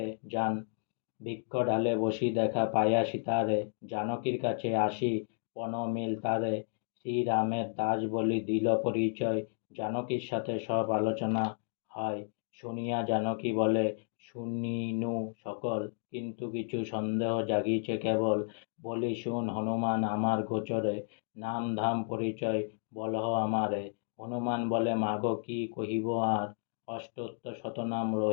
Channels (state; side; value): silent; right; digital silence